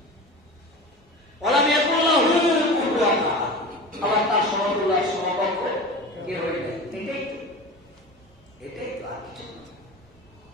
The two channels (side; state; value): both; normal; correlation 0.32